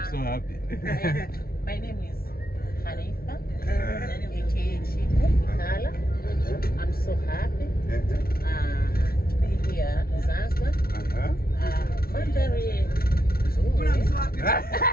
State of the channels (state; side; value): late; right; 0.44 ms